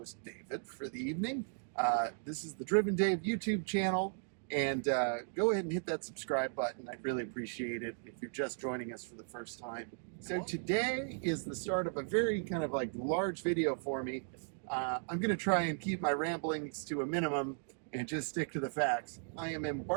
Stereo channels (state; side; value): silent; left; digital silence